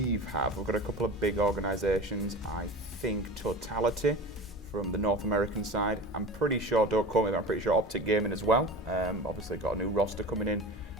have. We've got a couple of big organizations. I think Totality from the North American side. I'm pretty sure, don't quote me, but I'm pretty sure Optic Gaming as well. Obviously got a new roster coming in.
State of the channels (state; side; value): normal; both; correlation 0.32